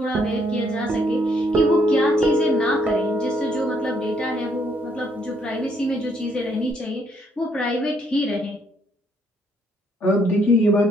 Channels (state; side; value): normal; both; correlation 0.70